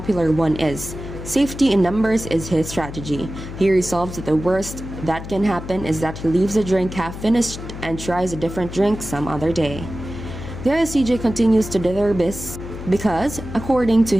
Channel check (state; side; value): noise; left; hum, 10 dB below the sound